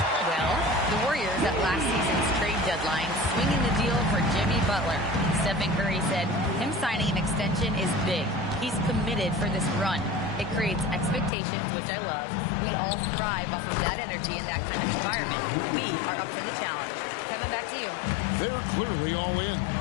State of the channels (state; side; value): drops out; right; at 11.3 s